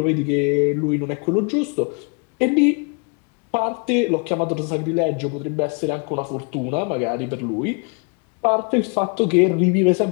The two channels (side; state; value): right; quieter; 33.8 dB